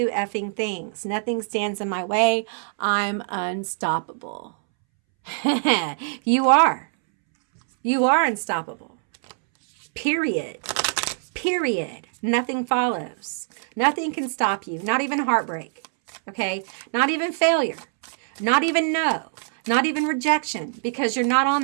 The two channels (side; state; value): left; silent; 63 dB below the other